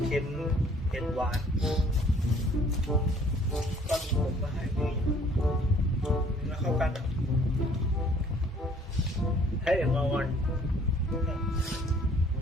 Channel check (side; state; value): both; normal; correlation 0.58